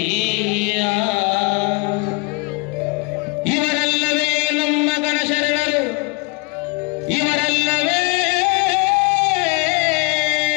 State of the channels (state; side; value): quieter; right; 29.5 dB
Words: ಇವರೆಲ್ಲವೇ ನಮ್ಮ ಗಣಶರಣರು ಇವರೆಲ್ಲವೇ